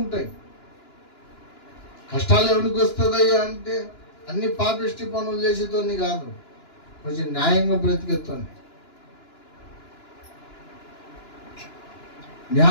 కష్టాలు ఎవరికి వస్తుందయ్యా అంటే అన్ని పాపిష్టి పనులు చేసేతోని కాదు, కొంచెం న్యాయంగా బ్రతికేతోని,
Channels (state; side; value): late; right; 2.9 ms